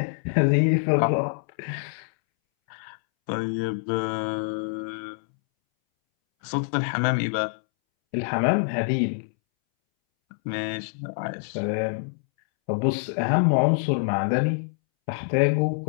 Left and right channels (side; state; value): right; silent; 61 dB below the other